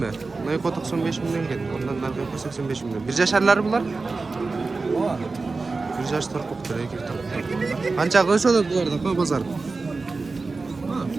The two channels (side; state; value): left; quieter; 3.9 dB